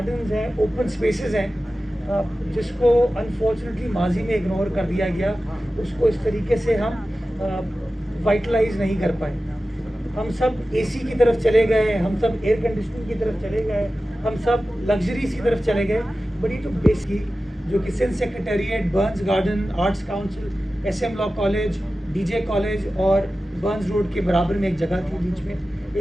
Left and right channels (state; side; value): normal; both; correlation 0.95